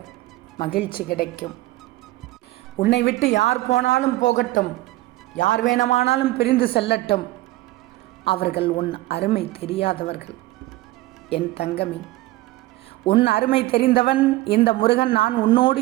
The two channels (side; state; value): left; quieter; 18.0 dB